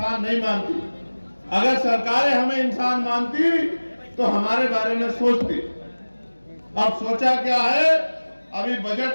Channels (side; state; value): both; inverted; correlation -1.00